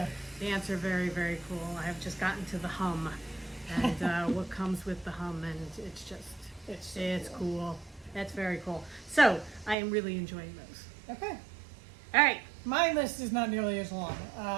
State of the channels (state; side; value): drops out; left; at 9.8 s